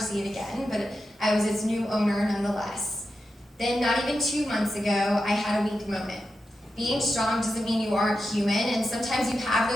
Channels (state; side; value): normal; both; correlation 0.89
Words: it again, but I was its new owner nonetheless. Then, not even 2 months ago, I had a weak moment. Being strong doesn't mean you aren't human, and sometimes you have